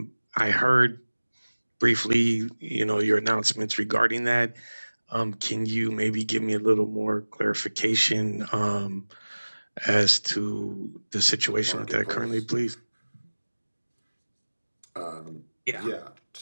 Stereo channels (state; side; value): inverted; both; correlation -1.00